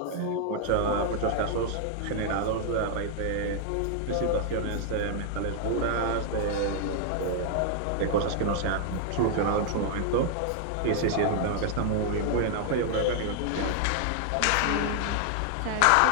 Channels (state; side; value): different; both; correlation 0.00